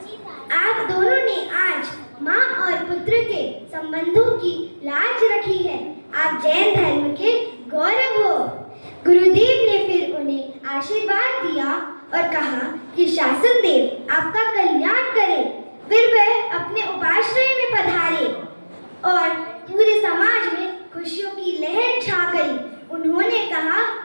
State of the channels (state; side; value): inverted; both; correlation -1.00